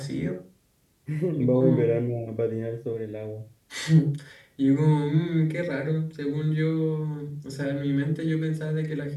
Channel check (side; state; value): both; identical; correlation 1.00